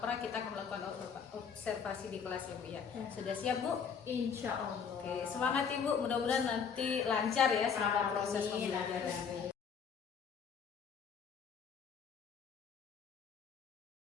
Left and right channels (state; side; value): quieter; right; 6.7 dB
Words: pra kita akan melakukan observasi di kelas ya Bu ya. Sudah siap Bu? Insya Allah. Oke, semangat Ibu, mudah-mudahan nanti lancar ya selama proses pembelajaran.